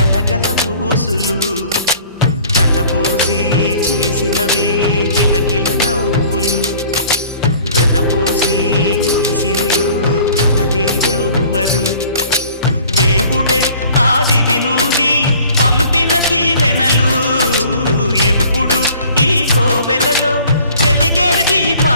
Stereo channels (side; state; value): both; inverted; correlation -0.51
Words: ఊసులు కలబోసి చేసినవి కిలకిల నవ్వులు వెలబోసి సిరులు కొనలేరెవ్వరు దేవుడే ఆదివి నుండి పంపిన దీవెనలు ఎప్పుడు ఈ కోవెలలో వెలిగే